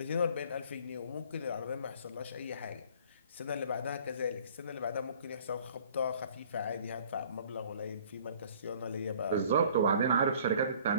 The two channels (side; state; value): both; inverted; correlation -0.54